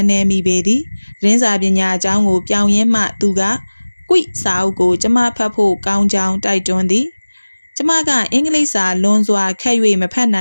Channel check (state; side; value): inverted; both; correlation -1.00